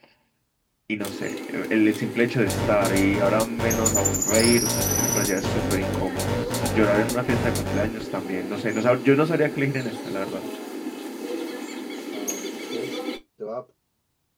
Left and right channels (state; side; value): identical; both; correlation 1.00